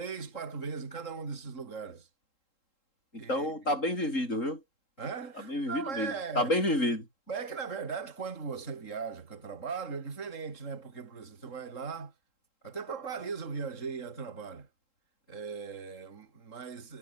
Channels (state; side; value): late; right; 3.7 ms